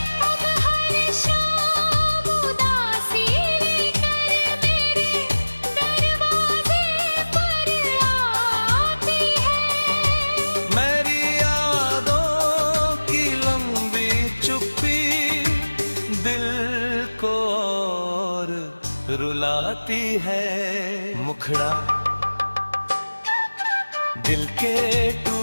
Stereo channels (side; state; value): both; inverted; correlation -1.00